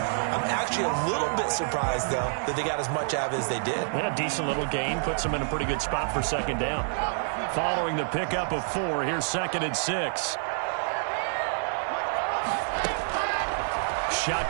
I'm actually a little bit surprised, though, that they got as much out of it as they did. Yeah, decent little gain. Puts them in a pretty good spot for 2nd down. Following the pickup of 4, here's 2nd and 6.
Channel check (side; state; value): left; silent; digital silence